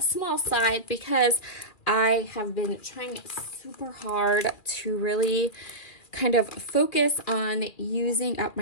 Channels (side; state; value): right; late; 2.5 ms